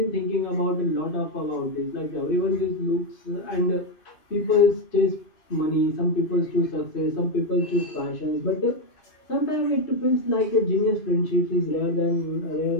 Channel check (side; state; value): right; late; 2.6 ms